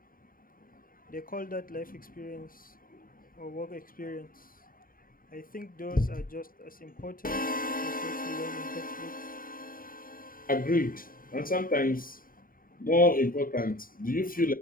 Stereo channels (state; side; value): late; right; 0.41 ms